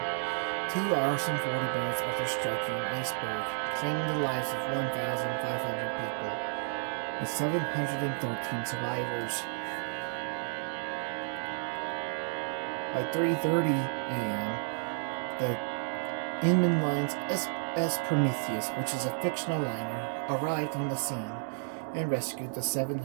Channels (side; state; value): left; silent; 57 dB below the other